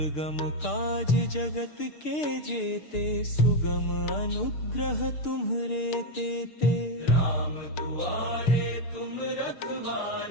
काज जगत के जेते, सुगम अनुग्रह तुम्हरे तेते। राम दुआरे तुम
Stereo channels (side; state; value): right; late; 6.7 ms